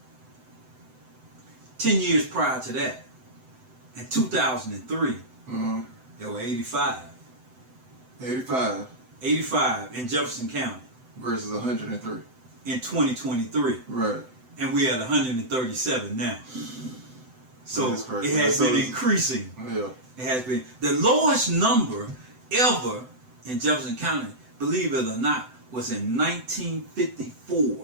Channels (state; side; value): late; left; 7.9 ms